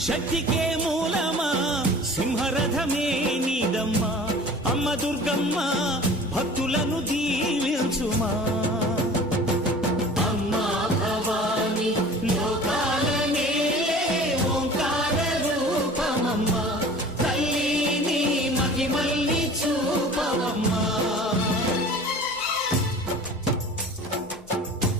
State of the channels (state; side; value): normal; both; correlation 0.43